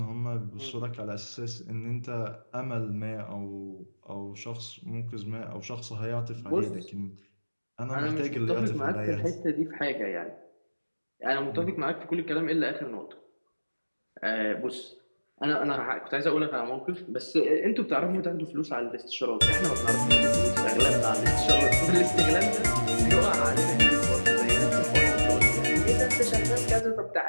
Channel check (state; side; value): inverted; both; correlation -1.00